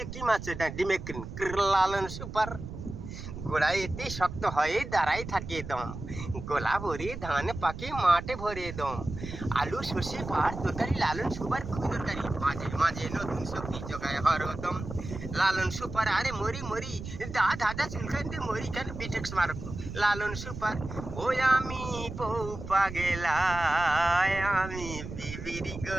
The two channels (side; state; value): right; noise; rumble, 9 dB below the sound